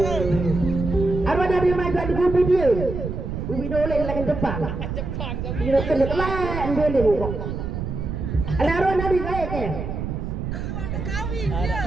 Arwah dari mai gak di dia. Bibi dole lagi depan. Dia kena telan dole kok. Ada arwah dari kaya ke?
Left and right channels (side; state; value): right; noise; rumble, 5 dB below the sound